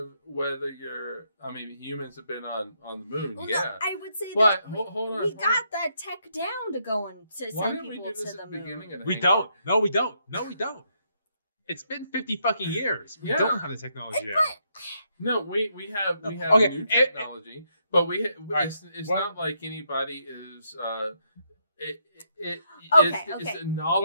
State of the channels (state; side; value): inverted; both; correlation -0.76